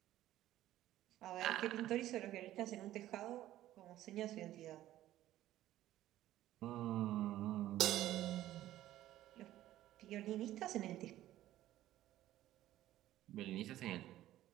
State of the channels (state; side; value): quieter; left; 14.0 dB